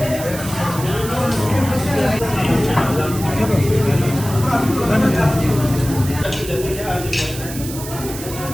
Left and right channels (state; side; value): noise; right; hiss, 11 dB below the sound